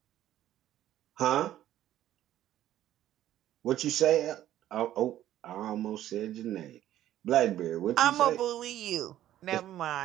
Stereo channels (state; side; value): quieter; left; 12.7 dB